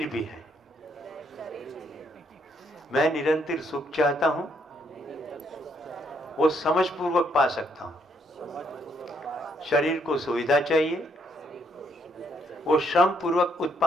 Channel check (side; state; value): both; normal; correlation 0.72